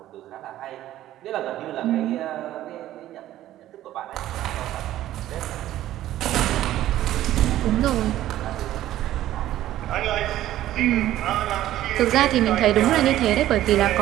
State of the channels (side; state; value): left; quieter; 13.6 dB